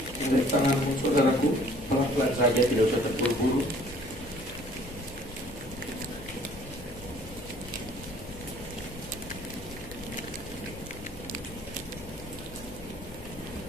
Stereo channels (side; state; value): left; noise; rumble, 15 dB below the sound